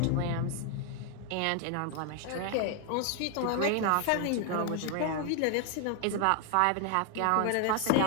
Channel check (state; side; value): different; both; correlation 0.00